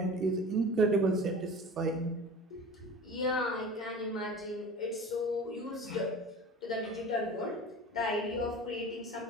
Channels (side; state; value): both; normal; correlation 0.38